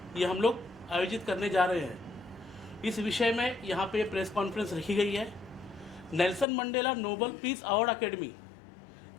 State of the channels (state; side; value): drops out; right; at 6.5 s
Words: ये हम लोग आयोजित करने जा रहे हैं। इस विषय में यहाँ पे प्रेस कॉन्फ्रेंस रखी गई है। Nelson Mandela Nobel peace award academy,